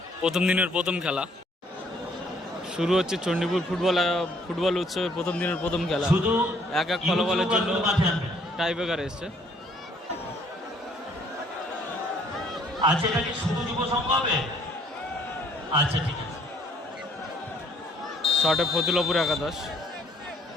প্রথম দিনের প্রথম খেলা শুরু হচ্ছে চণ্ডীপুর ফুটবল উৎসবের প্রথম দিনের প্রথম খেলা। এক ফলাফলের জন্য টাই ব্রেকার এসছে। আচ্ছা, এটা কি শুধু যুব সংঘ হবে? আচ্ছা, ঠিক আছে। শটে ফতুল্লাপুর একাদশ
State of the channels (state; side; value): normal; both; correlation 0.63